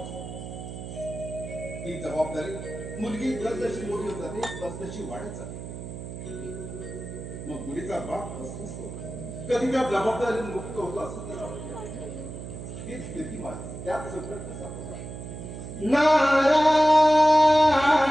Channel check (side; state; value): right; noise; hum, 10 dB below the sound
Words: ती जबाबदारी मुलगी जसजशी मोठी होत जाते तसतशी वाढत जाते. मग मुलीचा बाप असतो कधी त्या जबाबदारी मुक्त होतो असं त्याला वाटतं. ही स्थिती माझी त्याच संकट सापडतो.